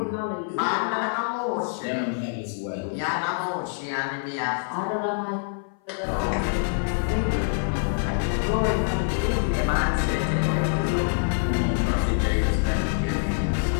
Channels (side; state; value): right; silent; 56 dB below the other